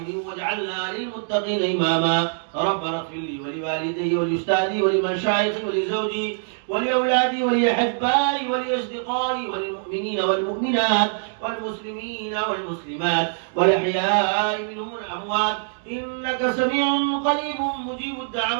واجعلنا للمتقين إماما. ربنا اغفر لي ولوالدي ولأستاذي ولمشايخي ولزوجي ولأولادي ولأحبائي ولأصدقائي وللمؤمنين والمؤمنات والمسلمين والمسلمات والأحياء منهم والأموات إنك سميع قريب مجيب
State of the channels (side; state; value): left; silent; digital silence